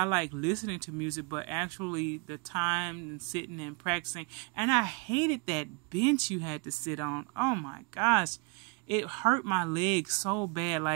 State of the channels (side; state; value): left; quieter; 31.2 dB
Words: like listening to music, but actually the time and sitting and practicing. And I hated that bench you had to sit on. Oh my gosh. It hurt my legs so bad.